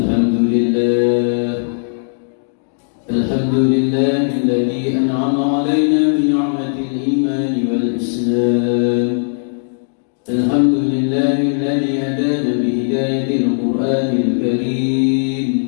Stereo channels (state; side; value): silent; right; digital silence